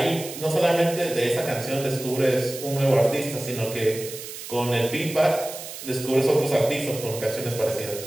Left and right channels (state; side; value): noise; right; hiss, 11 dB below the sound